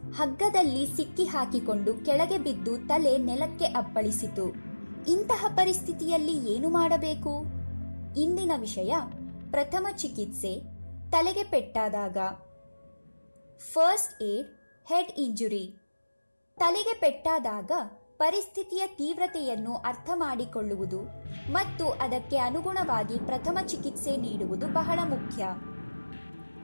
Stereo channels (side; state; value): both; inverted; correlation -1.00